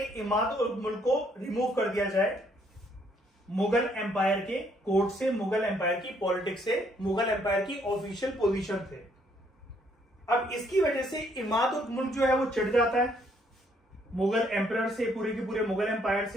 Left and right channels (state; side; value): normal; both; correlation 0.68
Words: इमाद उल मुल्क को रिमूव कर दिया जाए मुगल एम्पायर के कोर्ट से, मुगल एम्पायर की पॉलिटिक्स से, मुगल एम्पायर की ऑफिशियल पोजीशन से। अब इसकी वजह से इमाद उल मुल्क जो है वो चिढ़ जाता है मुगल एम्परर से, पूरे के पूरे मुगल एम्पायर